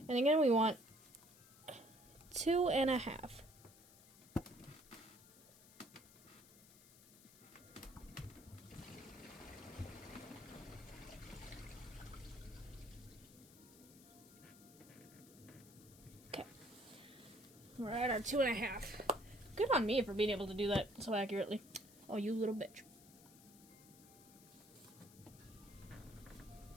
And again, we want 2.5. Okay. We're at our 2.5. Good on me for being able to do that so accurately. Oh, you little bitch.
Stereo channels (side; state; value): left; noise; hiss, 22 dB below the sound